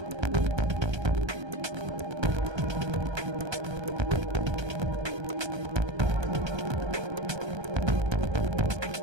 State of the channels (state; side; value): late; left; 1.3 ms